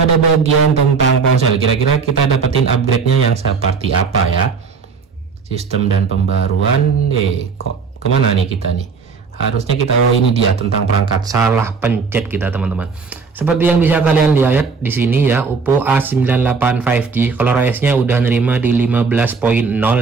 bagian tentang ponsel. Kira-kira kita dapetin upgrade-nya yang seperti apa ya? Sistem dan pembaruan. Kok kemana nih kita nih? Harusnya kita, oh ini dia tentang perangkat, salah pencet kita teman-teman. Seperti yang bisa kalian lihat di sini ya, Oppo A98 5G color OS-nya udah nerima di 15.0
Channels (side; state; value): left; quieter; 5.0 dB